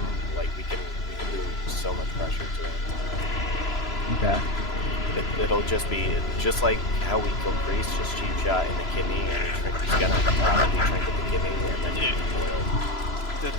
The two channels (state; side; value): late; right; 3.0 ms